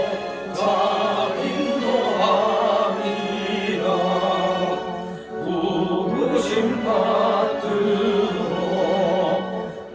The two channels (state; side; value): identical; both; correlation 1.00